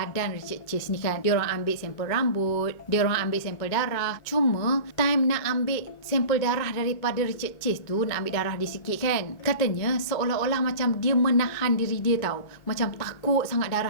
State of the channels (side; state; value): right; late; 2.2 ms